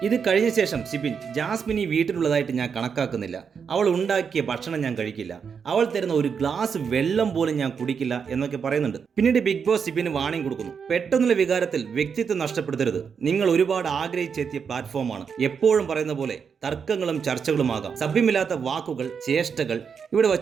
ഇത് കഴിഞ്ഞ ശേഷം സിബിൻ ജാസ്മിൻ ഈ വീട്ടിലുള്ളതായിട്ട് ഞാൻ കണക്കാക്കുന്നില്ല, അവൾ ഉണ്ടാക്കിയ ഭക്ഷണം ഞാൻ കഴിക്കില്ല, അവൾ തരുന്ന ഒരു ഗ്ലാസ് വെള്ളം പോലും ഞാൻ കുടിക്കില്ല എന്നൊക്കെ പറയുന്നുണ്ട്. പിന്നീട് ബിഗ് ബോസ് സിബിന് വാണിംഗ് കൊടുക്കുന്നു. പെട്ടെന്നുള്ള വികാരത്തിൽ വ്യക്തിത്വം നഷ്ടപ്പെടുത്തരുത്. നിങ്ങൾ ഒരുപാട് ആഗ്രഹിച്ചെത്തിയ പ്ലാറ്റ്ഫോമാണ്. എപ്പോഴും പറയുന്ന പോലെ തർക്കങ്ങളും ചർച്ചകളുമാകാം. സഭ്യമില്ലാത്ത വാക്കുകൾ, ചേഷ്ടകൾ ഇവിടെ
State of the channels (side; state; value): left; quieter; 6.5 dB